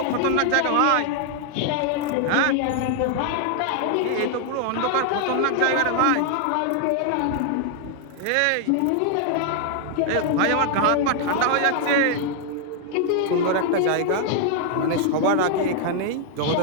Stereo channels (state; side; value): different; both; correlation 0.00